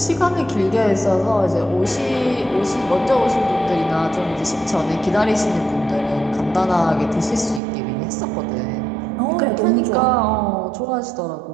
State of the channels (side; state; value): left; drops out; at 7.6 s